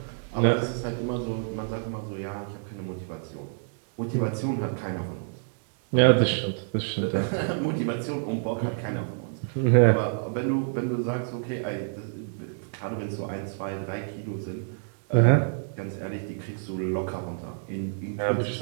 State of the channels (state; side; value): silent; left; digital silence